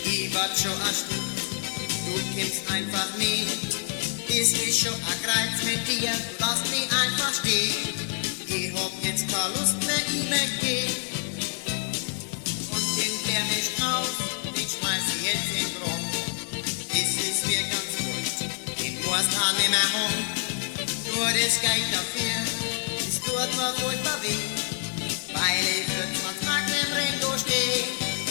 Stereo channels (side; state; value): right; silent; 60 dB below the other